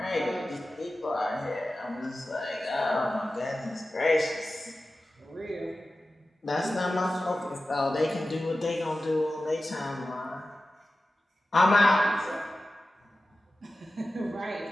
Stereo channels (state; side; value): normal; both; correlation 0.95